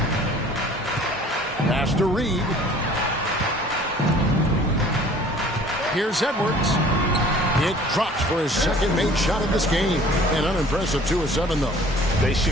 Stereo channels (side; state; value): both; normal; correlation 0.50